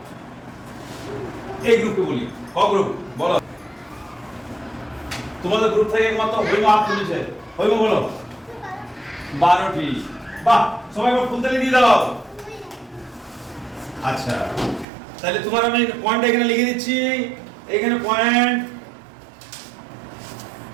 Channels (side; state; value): left; drops out; at 14.9 s